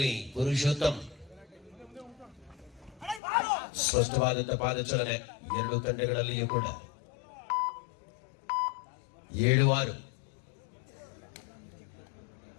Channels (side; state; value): right; drops out; at 3.2 s